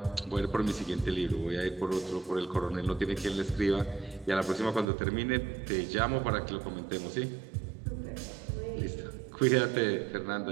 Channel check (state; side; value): drops out; left; at 4.9 s